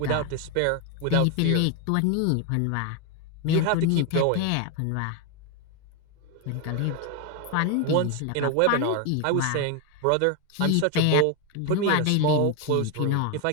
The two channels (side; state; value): both; different; correlation 0.01